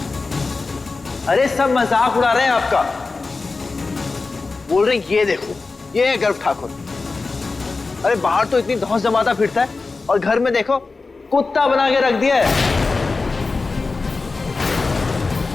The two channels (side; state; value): right; quieter; 3.9 dB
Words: अरे सब मजाक उड़ा रहे हैं आपका। बोल रहे हैं ये देखो, ये है गर्व ठाकुर। अरे बाहर तो इतनी धौंस जमाता फिरता है और घर में देखो कुत्ता बना के रख दिया है।